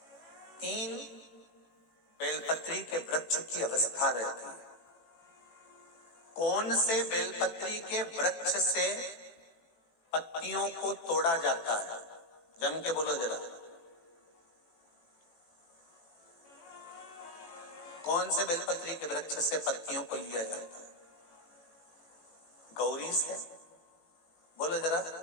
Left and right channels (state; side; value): late; right; 18 ms